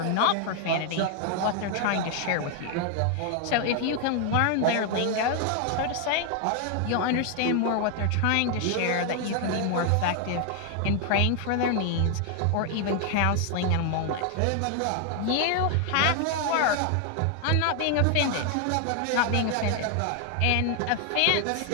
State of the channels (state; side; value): different; both; correlation 0.00